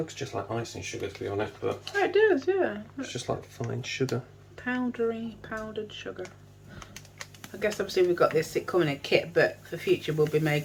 just like icing sugar, to be honest, but Oh, it does, yeah. it's just like fine sugar. Powdered sugar. I guess obviously we've got this, it come in a kit, but for future we'll be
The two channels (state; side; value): identical; both; correlation 1.00